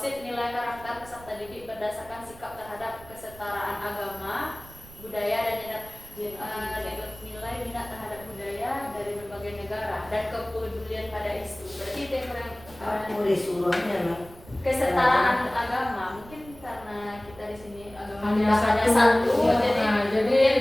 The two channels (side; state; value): right; noise; rumble, 20 dB below the sound